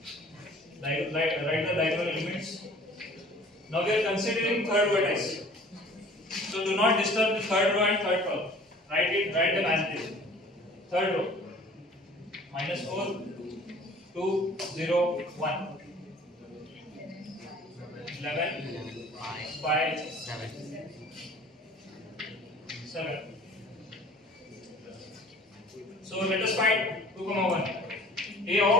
Write the diagonal elements. Now we are considering third vertex. So do not disturb the third row and third column. Write them as it is. Third row. -4, 2, 0, 1. 11, 5, 7. So let us find 2 comma 1. A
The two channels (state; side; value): normal; both; correlation 0.49